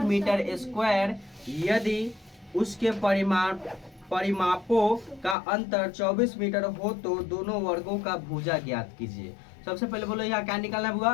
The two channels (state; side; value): drops out; right; at 5.4 s